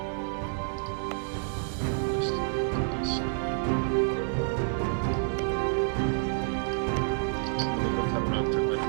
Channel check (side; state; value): left; silent; digital silence